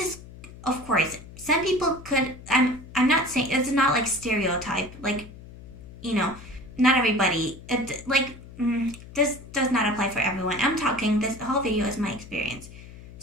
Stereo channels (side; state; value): left; noise; hum, 17 dB below the sound